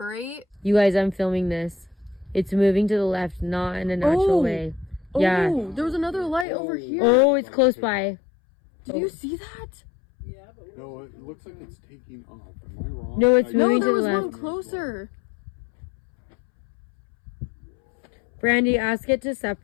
You guys, I'm filming this. It's moving to the left, not in a natural way. Yeah. Oh, there was another light over here. Oh, it's close by. Did you see that? Yeah, but No, it looks like it's taking off. Am I wrong? No, it's No, moving there to the was one left. closer. Brandy, ask it to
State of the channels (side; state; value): right; drops out; at 6.5 s